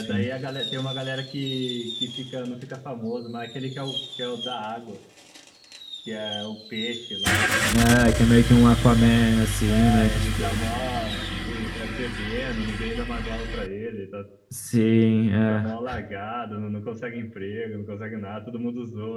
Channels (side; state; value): both; identical; correlation 1.00